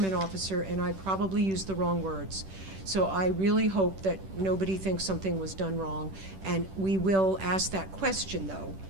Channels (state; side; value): late; left; 10 ms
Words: officer, and I probably used the wrong words. So I really hope that nobody thinks something was done wrong, and we will ask that question, though,